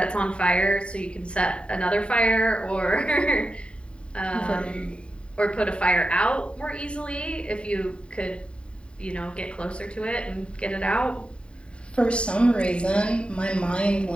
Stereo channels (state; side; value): late; right; 0.055 ms